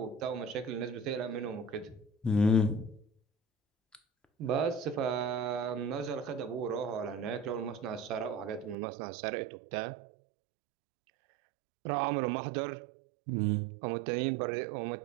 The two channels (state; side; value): drops out; left; at 8.8 s